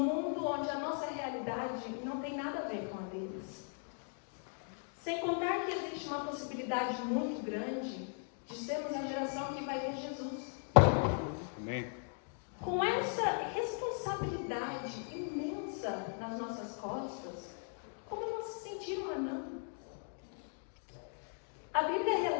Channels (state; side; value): silent; right; 52 dB below the other